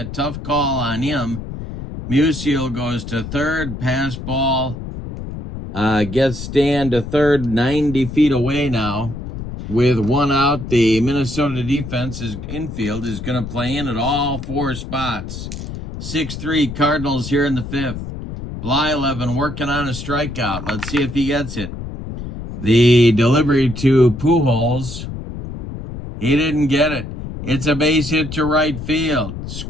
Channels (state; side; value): noise; left; rumble, 9 dB below the sound